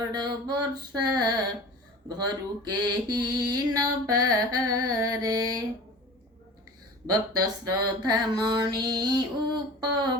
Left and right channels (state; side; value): normal; both; correlation 0.39